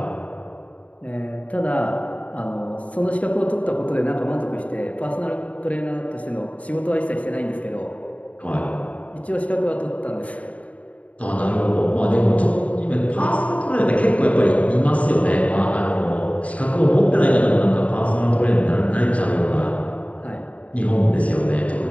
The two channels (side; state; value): right; late; 0.067 ms